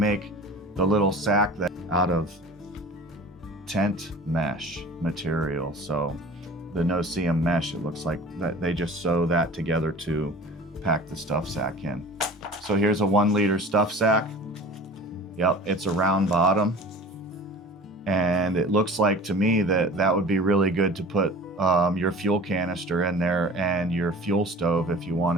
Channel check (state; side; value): normal; both; correlation 0.40